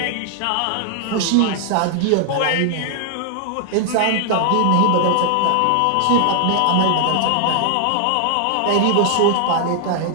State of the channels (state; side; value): different; both; correlation 0.00